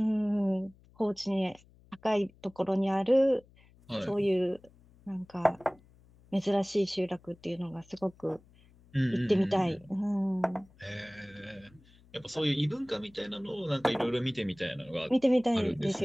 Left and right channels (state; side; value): noise; left; hum, 28 dB below the sound